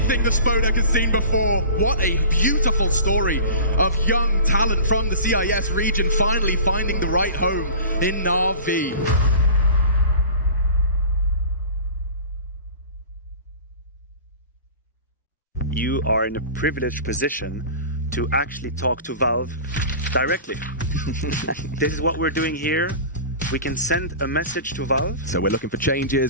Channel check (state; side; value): inverted; both; correlation -0.38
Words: bravest Spodek has seen before. What a beautiful story of young talent from the CIS region finally finding the right home in Na'Vi. You are in a privileged position to actually talk to Valve directly. This is what we're doing here. We can send a message to Valve. So we're looking for